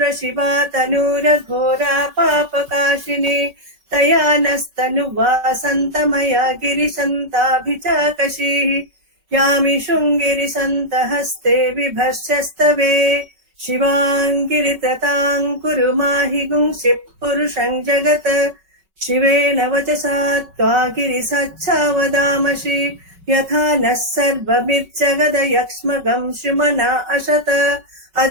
शिवा तनूरघोरा पापकाशिनी. तया नस्तनुवा सन्तमया गिरिशन्ताभिचाकशीः. यामि शृङ्गिरिसन्तहस्ते विभर्षस्तवे. शिवाङ्गिरिततां कुरु माहि गुंसिः पुरुषं जगत्. शिवेन वचसा त्वा गिरिसाच्छा वदामसि. यथा नः सर्वमिज्जगदयक्ष्मगं शुमना अशत.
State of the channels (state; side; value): late; left; 5.3 ms